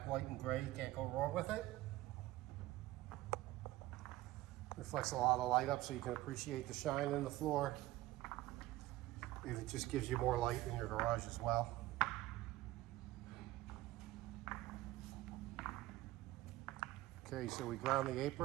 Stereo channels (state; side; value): quieter; left; 16.8 dB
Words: white, and gray. You can't go wrong with it. Reflects a lot of light up so you can appreciate the shine in the floor. And it just gives you more light in your garage as well. Okay, so we ground the